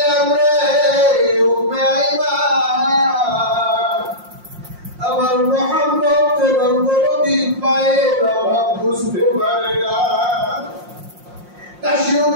রে উম্মে আইমান। আমার মুহাম্মদ যখন কোনদিন পায়ের অভাব বুঝতে পারে না, কাশি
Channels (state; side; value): late; left; 5.6 ms